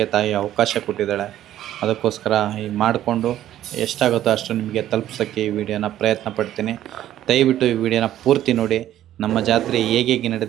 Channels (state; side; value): quieter; left; 12.5 dB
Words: ತಾಯಿ ಅವಕಾಶ ಕೊಟ್ಟಿದ್ದಾಳೆ. ಅದಕ್ಕೋಸ್ಕರ ಈ ಮಾಡಿಕೊಂಡು ಎಷ್ಟಾಗುತ್ತೋ ಅಷ್ಟು ನಿಮಗೆ ತಲುಪಿಸೋಕ್ಕೆ ಈ ವಿಡಿಯೋನ ಪ್ರಯತ್ನ ಪಡ್ತೀನಿ. ದಯವಿಟ್ಟು ಈ ವಿಡಿಯೋನ ಪೂರ್ತಿ ನೋಡಿ. ನಮ್ಮ ಜಾತ್ರೆ ಹೇಗೆ